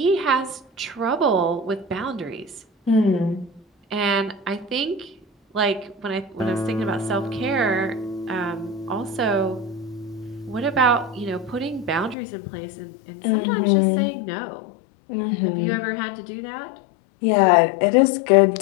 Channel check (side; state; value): right; drops out; at 12.2 s